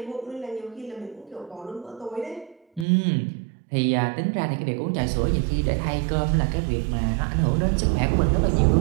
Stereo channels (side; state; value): left; drops out; at 2.9 s